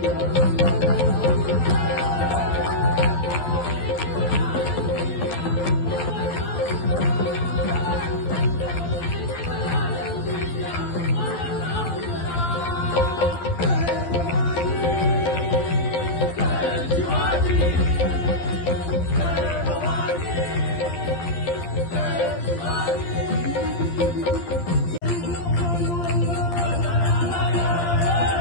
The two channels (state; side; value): late; right; 12 ms